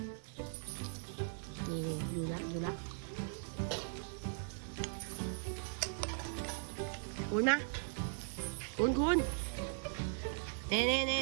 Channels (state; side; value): silent; left; 52 dB below the other